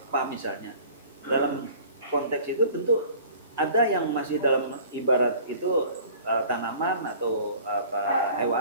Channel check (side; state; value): both; inverted; correlation -0.48